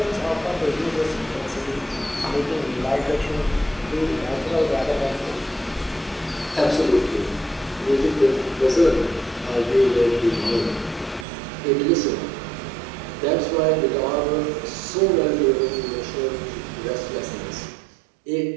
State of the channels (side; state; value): left; drops out; at 11.2 s